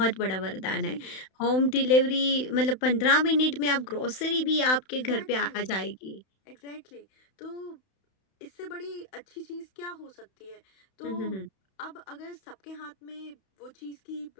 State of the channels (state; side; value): late; right; 31 ms